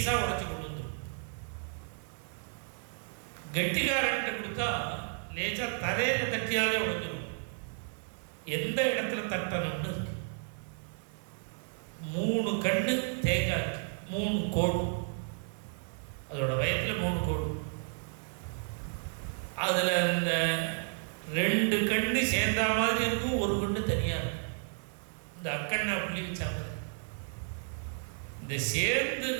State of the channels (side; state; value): left; silent; 56 dB below the other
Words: உடைச்சு கொடுத்து. கெட்டிக்காரன்ட்ட கொடுத்தா லேசா தரையில தட்டியாலே உடைஞ்சிடும். எந்த இடத்துல தட்டணும்னு 3 கண்ணு தேங்காய், 3 கோடு, அதோட வயத்துல 3 கோடு. அதுல இந்த 2 கண்ணு சேர்ந்தா மாதிரி இருக்கும், ஒரு கண்ணு தனியா இருக்கும். இந்த அக்கண்ணா புள்ளி வச்சா மாதிரி இந்த சேர்ந்து